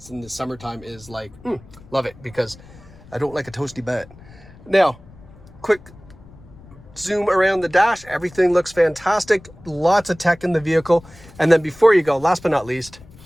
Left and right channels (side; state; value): left; noise; rumble, 22 dB below the sound